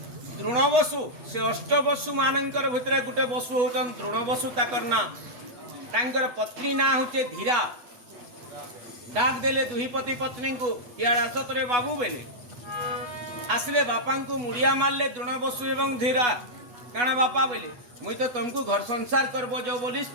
द्रोणवसु से अष्टवसु मानकर भितर गोटे वसु होचन द्रोणवसु, ताकर ना तांकर पत्नी ना होचे धीरा। डाक देले दुही पति पत्नी को, इयाड़ आसत रे बाबू बेले आसले बापा को मुड़िया मारले द्रोणवसु एवं धीरा। काण बापा बोले मुई तो तुमको घर संसार करबो जो बोली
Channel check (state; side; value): late; left; 8.2 ms